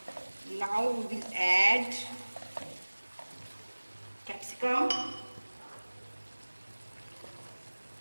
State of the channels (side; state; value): both; inverted; correlation -1.00